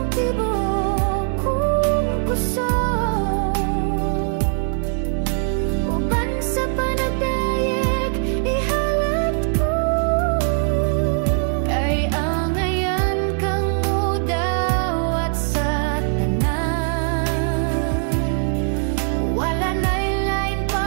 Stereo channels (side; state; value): left; silent; 57 dB below the other